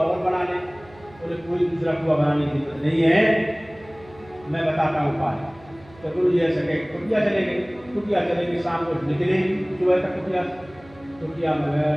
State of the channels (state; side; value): noise; right; hum, 24 dB below the sound